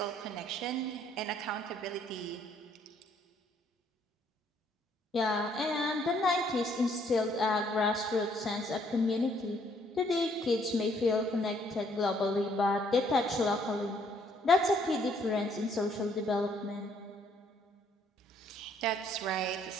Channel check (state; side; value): normal; both; correlation 0.66